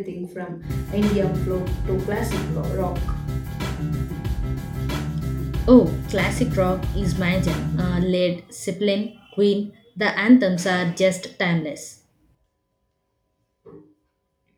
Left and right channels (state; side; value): identical; both; correlation 1.00